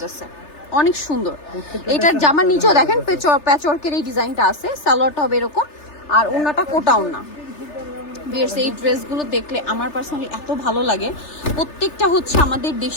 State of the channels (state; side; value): late; right; 3.3 ms